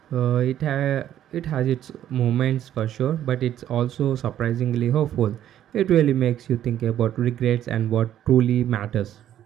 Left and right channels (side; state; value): left; quieter; 11.3 dB